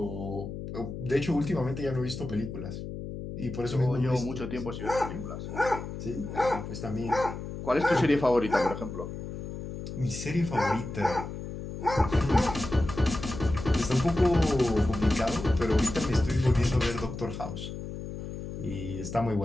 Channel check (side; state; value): left; noise; hum, 8 dB below the sound